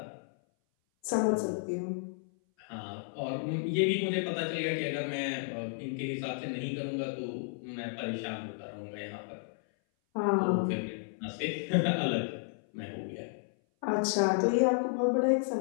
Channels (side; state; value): right; silent; 56 dB below the other